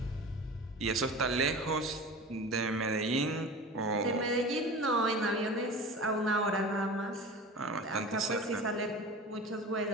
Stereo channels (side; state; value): both; normal; correlation 0.34